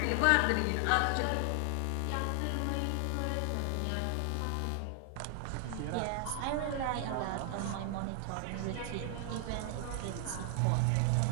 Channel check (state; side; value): different; both; correlation 0.00